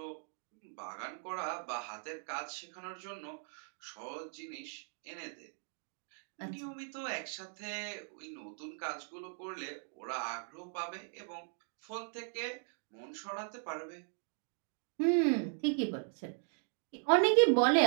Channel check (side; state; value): left; silent; 52 dB below the other